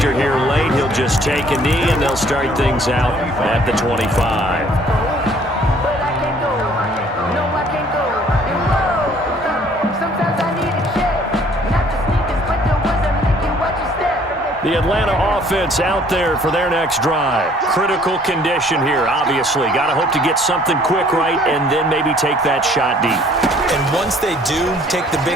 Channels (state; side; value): normal; both; correlation 0.58